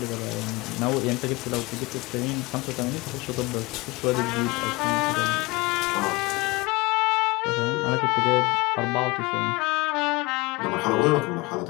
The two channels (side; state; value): right; quieter; 24.0 dB